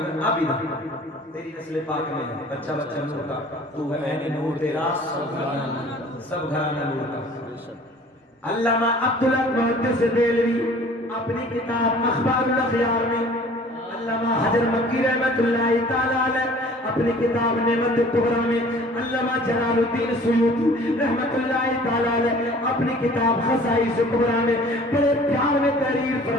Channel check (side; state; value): both; normal; correlation 0.49